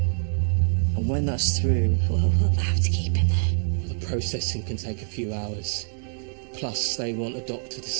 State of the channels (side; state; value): left; silent; digital silence